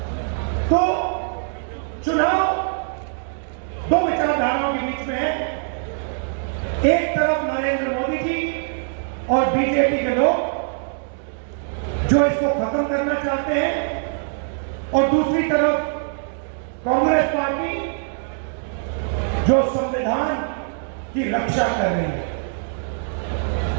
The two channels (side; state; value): left; silent; digital silence